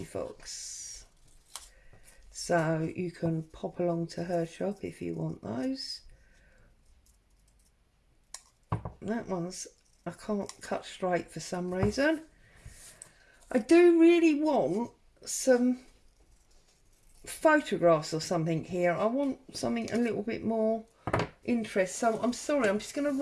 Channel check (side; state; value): both; identical; correlation 1.00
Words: Fox. So you can pop along to her shop if you want those. That one's, I can't cut straight for some reason. I do really want some photographs or something here. I want something a little bit more interest. So I'm sorry, I'm just going to